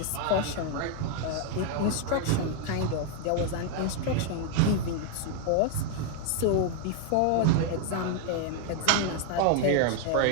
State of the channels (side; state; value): both; different; correlation 0.00